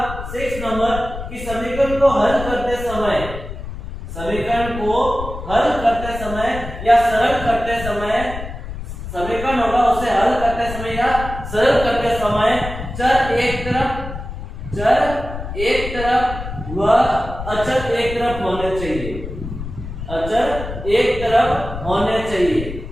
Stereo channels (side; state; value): left; noise; rumble, 9 dB below the sound